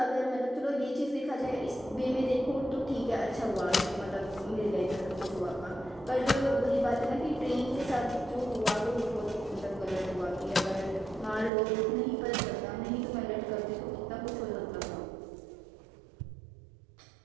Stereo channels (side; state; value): left; drops out; at 11.5 s